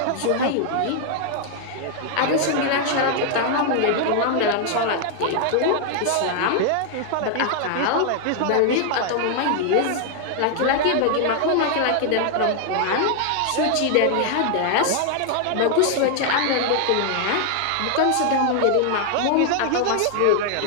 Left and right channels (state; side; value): different; both; correlation 0.00